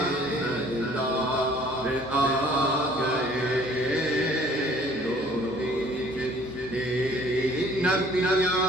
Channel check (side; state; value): both; normal; correlation 0.55